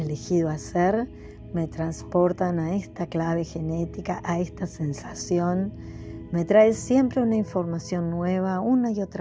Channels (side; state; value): both; identical; correlation 1.00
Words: hacer me transportan a esta clave genética, a esta sensación. Me trae siempre una información nueva, una y